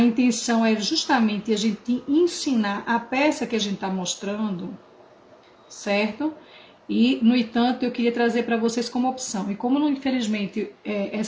é justamente a gente ensinar a peça que a gente está mostrando, certo? E, no entanto, eu queria trazer para vocês como opção. E como, infelizmente,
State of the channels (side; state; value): both; identical; correlation 1.00